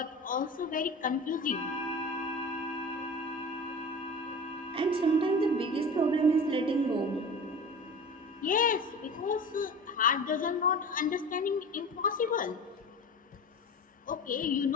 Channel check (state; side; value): normal; both; correlation 0.35